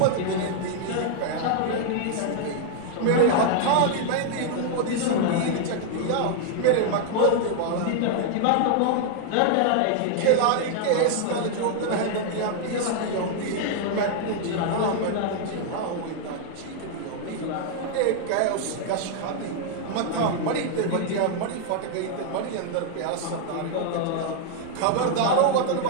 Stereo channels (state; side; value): different; both; correlation 0.00